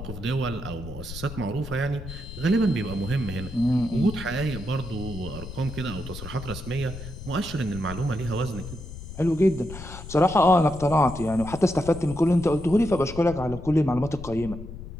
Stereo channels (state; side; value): noise; left; rumble, 11 dB below the sound